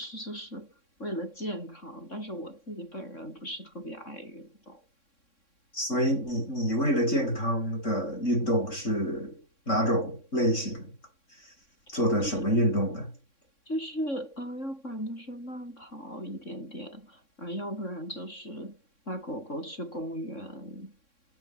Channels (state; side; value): late; right; 3.6 ms